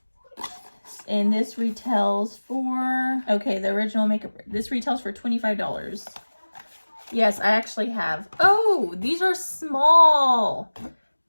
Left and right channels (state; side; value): inverted; both; correlation -1.00